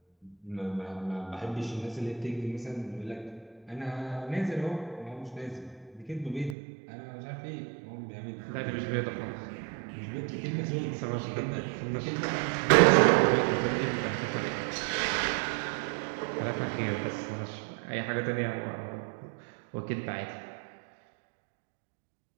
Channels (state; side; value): drops out; left; at 6.6 s